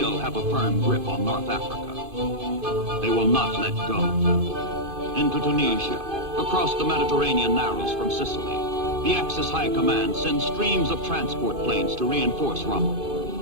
have a firm grip on North Africa. They will not let go. Into Tunisia, across the Mediterranean narrows from Sicily, the Axis High Command sends streams of transport planes to reinforce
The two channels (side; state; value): left; late; 2.5 ms